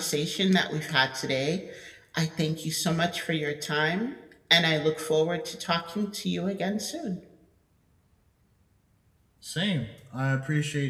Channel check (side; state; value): both; identical; correlation 1.00